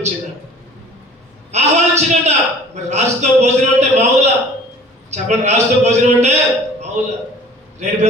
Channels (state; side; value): normal; both; correlation 0.48